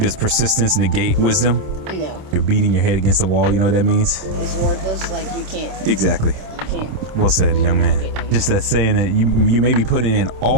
persistence negate wisdom? No. You're beating your head against the wall, you know what that means? It's worthless, like you can't. Exactly. Can't. Well said, young man. Just that saying that you may be putting in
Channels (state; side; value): late; left; 26 ms